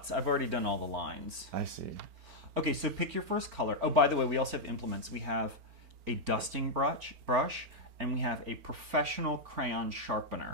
I've already done all the lines. I see. Okay, so pick your first color. Oh, by the way, we also have implements. We have a dusting brush, and we have a professional crayon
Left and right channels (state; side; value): late; left; 4.4 ms